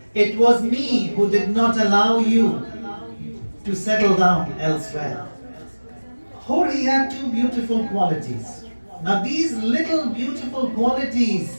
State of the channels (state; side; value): inverted; both; correlation -1.00